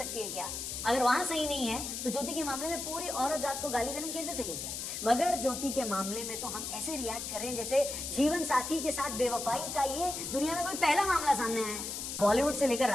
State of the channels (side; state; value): left; noise; hiss, 5 dB below the sound